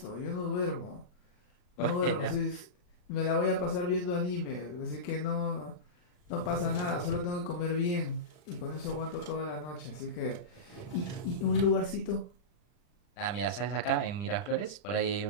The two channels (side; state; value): right; late; 40 ms